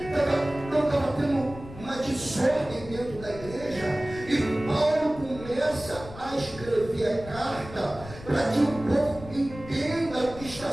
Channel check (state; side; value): noise; left; rumble, 15 dB below the sound